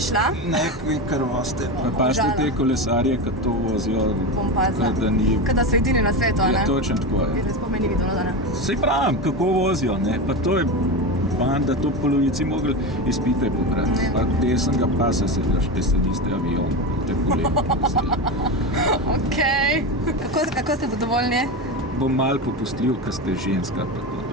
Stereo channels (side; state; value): both; normal; correlation 0.19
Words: šla? Ne, kar voste. Pazite te kolesarje, kad to vozijo, da ni... Kada so edini na svetu, ne? Ja, točno tako je. Zdaj spomeni videlo, da ne? Sej pravim, kako vozijo, ne? Pa to je banda, to polovici mogli izpite pobrati. Pa desnega pasa sedlaš, te sediste avion, te kolegi. Okej. Kako ste zadovoljni? Bom malo popustljiv, kad ste ženska, pa to